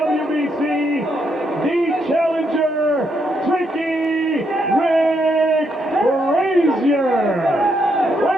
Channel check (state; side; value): normal; both; correlation 0.77